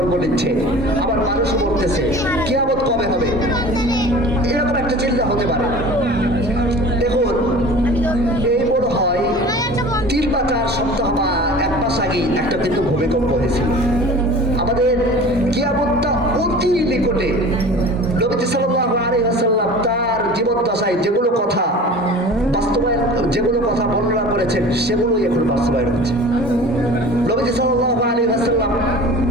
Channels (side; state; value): both; normal; correlation 0.40